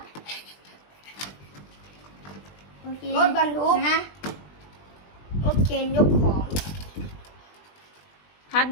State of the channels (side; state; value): right; late; 20 ms